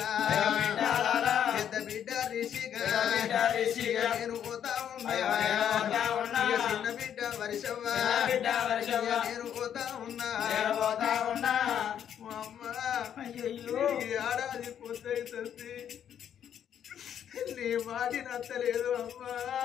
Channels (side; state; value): right; quieter; 9.3 dB